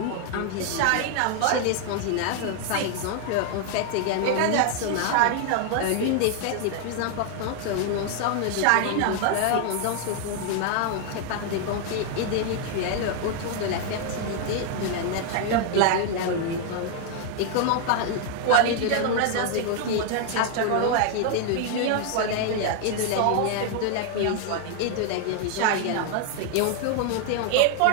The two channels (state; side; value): different; both; correlation 0.00